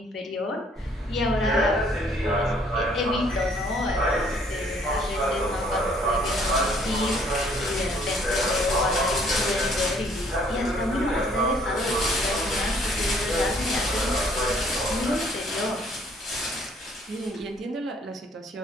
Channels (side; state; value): both; normal; correlation 0.62